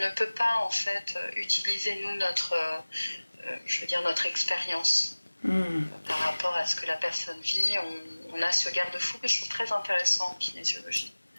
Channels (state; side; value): inverted; both; correlation -1.00